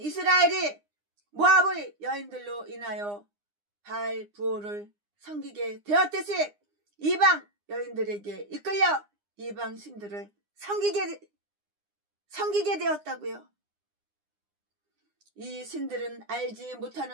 모압의 여인들로 인하여 바알 부호를 섬기게 되었듯이 이방 여인들에게 이끌려 이방 신들을 섬기게 되었다고요. 이 신들은 알지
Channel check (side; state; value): left; late; 9.8 ms